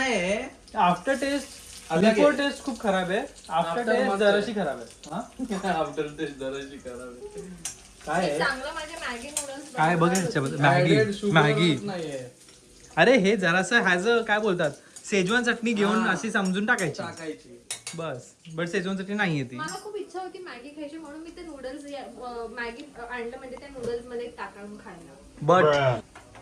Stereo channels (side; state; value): both; identical; correlation 1.00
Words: आफ्टर टेस्ट अलग बिफोर आहे. टेस्ट खूप खराब आहे. आफ्टर After टेस्ट मस्त जराशी खराब आहे. हा? आफ्टर टेस्ट जराशी खराब काय मी आहे चांगलं माझे मॅगी नूडल्स काय बघ ह्याच्यामध्ये? मॅगी मॅगी नाहीये अरे हे जरासं ह्याच काय बोलतात शेजवान चटणी घेऊन हा. अशी समजून टाकायची टाकायची. बस. बट शेजवान चटणी नाहीये ती. मला खूप इच्छा होती मॅगी खायची म्हणून मी ते नूडल्स मॅगी आणलं म्हणजे त्या नूडल्स मध्ये टाकून खायला. बट